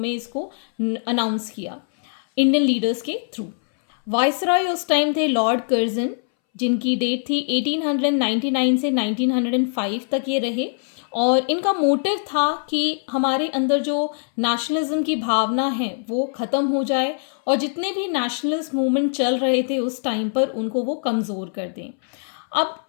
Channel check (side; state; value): right; silent; 62 dB below the other